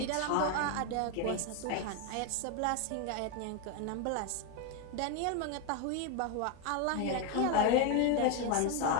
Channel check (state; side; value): different; both; correlation 0.02